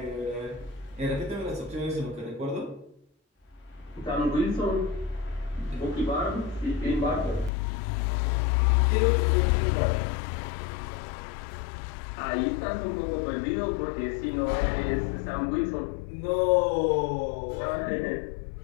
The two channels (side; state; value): right; drops out; at 7.5 s